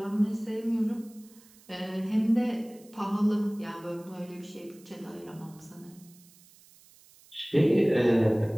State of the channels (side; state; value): right; noise; hiss, 26 dB below the sound